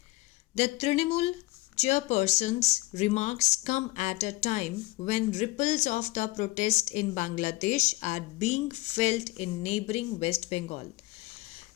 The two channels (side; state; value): right; quieter; 19.5 dB